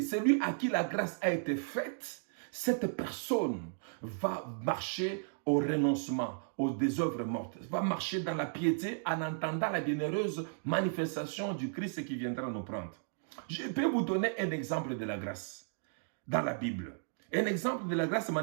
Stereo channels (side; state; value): left; silent; digital silence